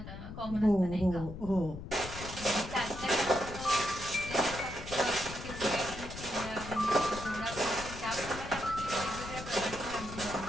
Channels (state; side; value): noise; left; rumble, 11 dB below the sound